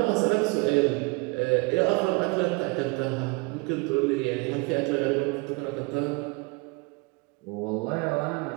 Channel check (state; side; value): quieter; left; 28.5 dB